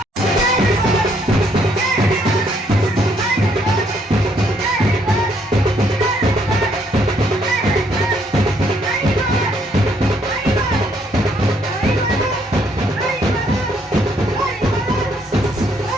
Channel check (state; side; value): normal; both; correlation 0.69